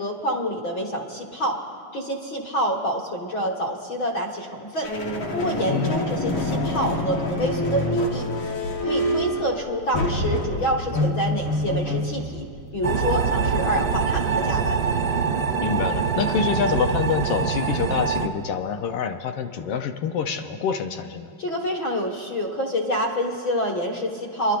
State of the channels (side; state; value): right; late; 6.1 ms